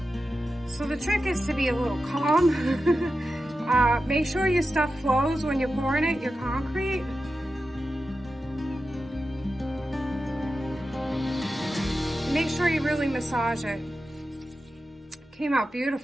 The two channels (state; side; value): normal; both; correlation 0.92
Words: So the trick is to be a little calm. Make sure your stuff flows when you're pouring it, your concrete. Make sure you really massage it. Came out